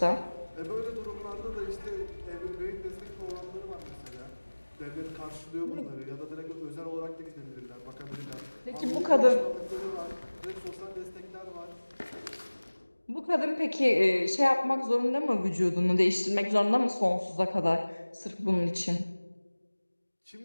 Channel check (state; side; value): inverted; both; correlation -1.00